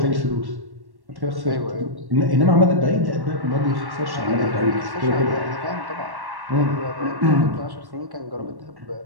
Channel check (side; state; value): left; late; 1.1 ms